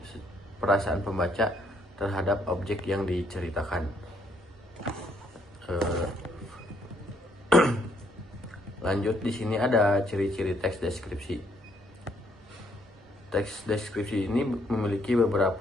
perasaan pembaca terhadap objek yang diceritakan. Lanjut, di sini ada ciri-ciri teks deskripsi. Teks deskripsi ini memiliki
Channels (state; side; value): normal; both; correlation 0.69